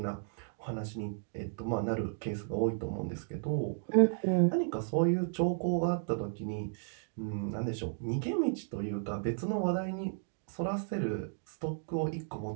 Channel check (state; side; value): silent; left; digital silence